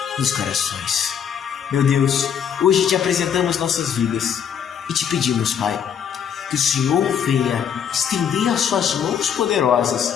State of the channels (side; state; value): right; quieter; 8.2 dB